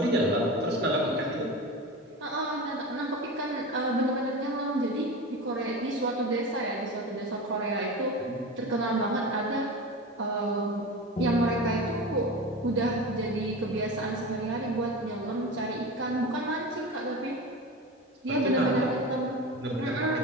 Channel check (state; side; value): normal; both; correlation 0.28